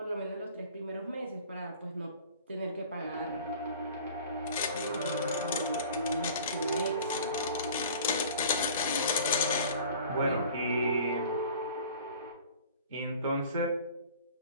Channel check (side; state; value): both; inverted; correlation -0.46